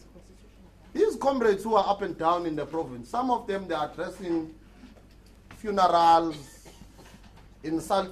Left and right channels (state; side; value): identical; both; correlation 1.00